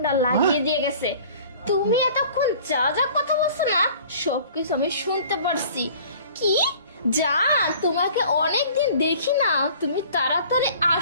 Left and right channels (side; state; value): both; inverted; correlation -0.48